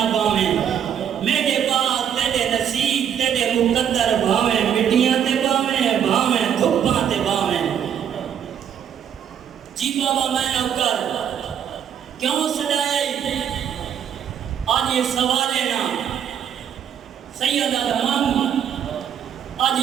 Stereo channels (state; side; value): quieter; left; 8.8 dB